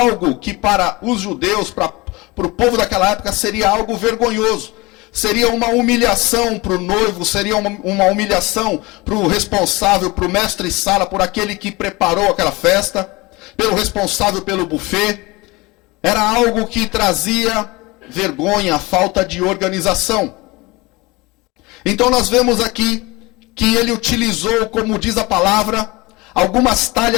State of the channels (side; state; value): right; quieter; 23.2 dB